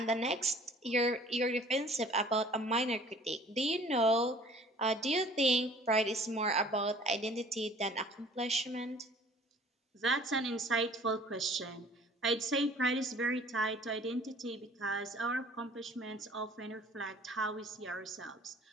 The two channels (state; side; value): normal; both; correlation 0.51